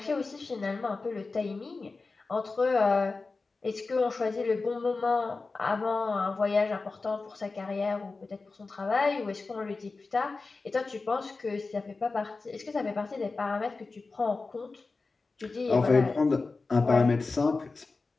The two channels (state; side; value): quieter; right; 3.9 dB